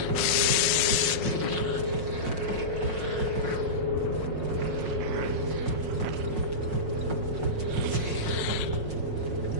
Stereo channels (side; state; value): left; late; 5.5 ms